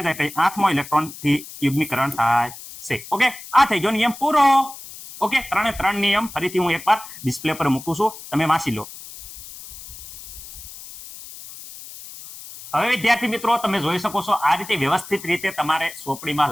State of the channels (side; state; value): left; noise; hiss, 15 dB below the sound